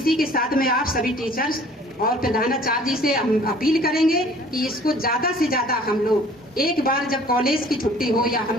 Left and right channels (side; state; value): both; normal; correlation 0.52